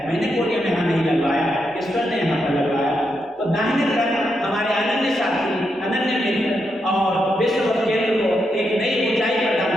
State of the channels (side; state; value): both; normal; correlation 0.83